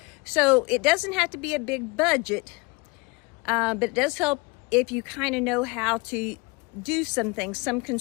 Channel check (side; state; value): right; quieter; 26.6 dB